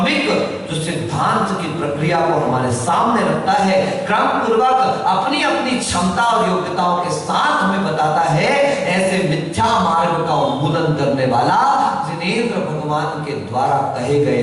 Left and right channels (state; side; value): identical; both; correlation 1.00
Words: जो सिद्धांत की प्रक्रिया को हमारे सामने रखता है, क्रम पूर्वक अपनी अपनी क्षमता और योग्यताओं के साथ हमें बताता है। ऐसे मिथ्या मार्ग का उन्मूलन करने वाला जिनेंद्र भगवान के द्वारा कहे